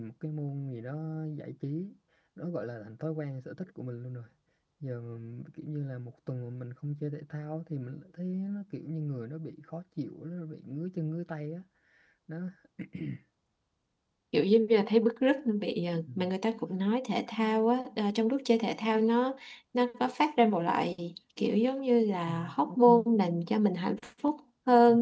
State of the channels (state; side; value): identical; both; correlation 1.00